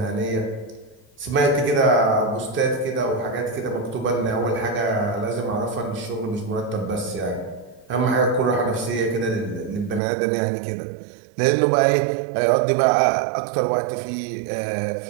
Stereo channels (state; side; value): drops out; left; at 10.0 s